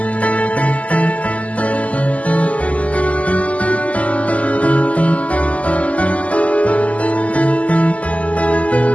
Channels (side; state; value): right; late; 0.069 ms